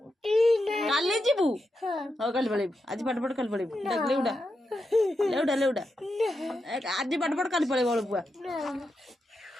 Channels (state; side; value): normal; both; correlation 0.87